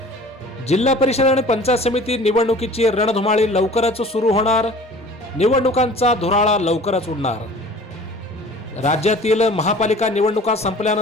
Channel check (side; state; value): both; normal; correlation 0.45